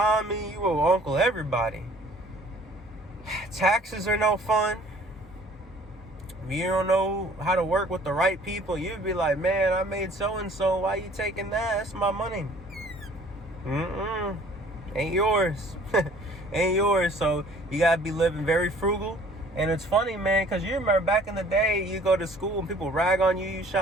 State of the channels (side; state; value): both; normal; correlation 0.53